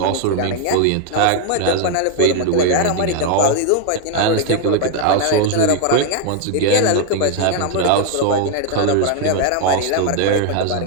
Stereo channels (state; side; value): different; both; correlation 0.00